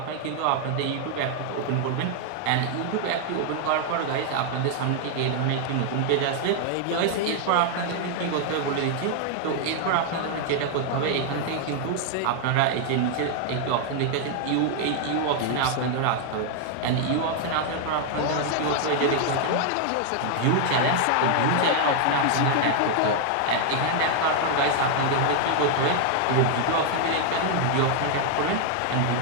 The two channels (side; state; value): both; different; correlation 0.00